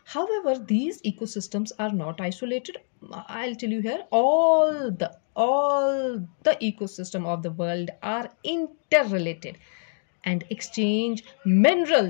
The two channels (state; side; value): silent; right; digital silence